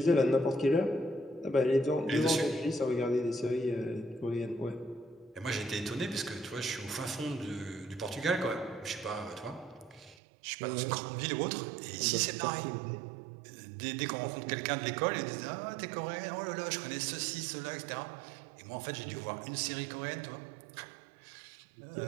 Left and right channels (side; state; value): left; drops out; at 10.2 s